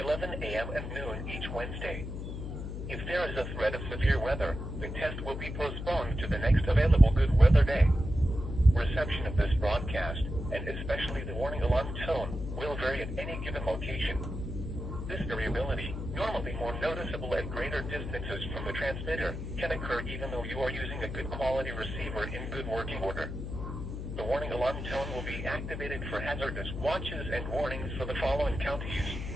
a.m. and noon each Wednesday. If there is a threat of severe weather, the test will be postponed to the next available good weather day. Reception of this broadcast, and especially the warning alarm tone, will vary at any given location. This variability, normally more noticeable at greater distances from the transmitter, can occur even though you are using a good quality receiver in good working order. The warning alarm tone will be activated for hazardous watches and warnings for the following counties:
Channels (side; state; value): left; noise; hum, 6 dB below the sound